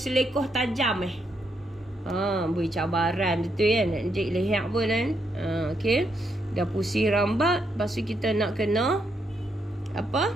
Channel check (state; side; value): normal; both; correlation 0.78